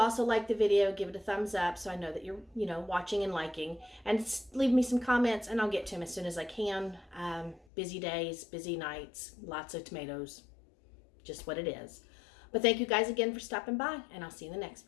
like the video, give it a thumbs up so I know that you're, watching and liking. And leave me some comments and I'll get to them as soon as I can. Busy days, busy nights, lots of tomatoes. Just what it is. But thank you guys again for stopping by, and I'll see you in the next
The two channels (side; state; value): right; drops out; at 7.7 s